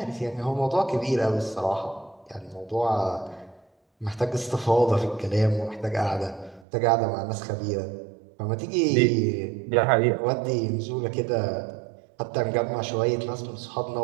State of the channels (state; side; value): drops out; left; at 6.7 s